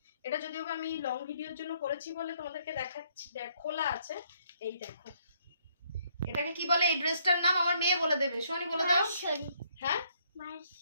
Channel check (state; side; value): inverted; both; correlation -0.68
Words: এটা যদিও আমি লং ভিডিওর জন্য করেছি বলে তোমাদেরকে দেখাচ্ছি, খোলা আছে। এই দেখো, এটাকে কি বলে? এই ড্রেসটার নাম আমার মেয়ে বলে দেবে। সোনি বলে দাও। হ্যাঁ,